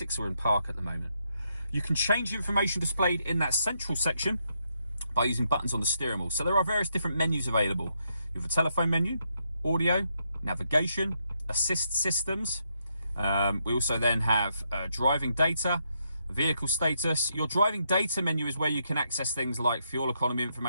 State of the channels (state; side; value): inverted; both; correlation -0.79